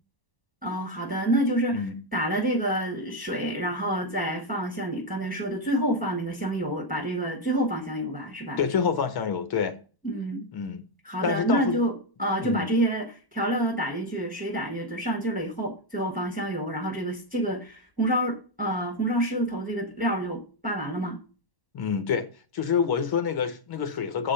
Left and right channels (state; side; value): late; right; 1.0 ms